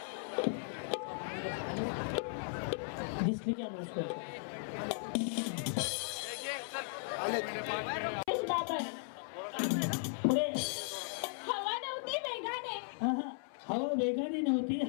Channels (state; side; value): silent; right; 53 dB below the other